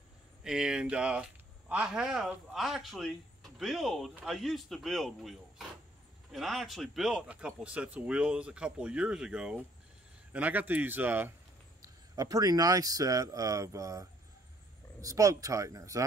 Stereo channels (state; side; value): normal; both; correlation 0.63